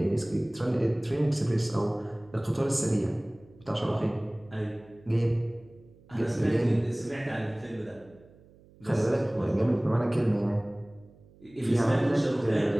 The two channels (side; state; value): right; noise; hum, 26 dB below the sound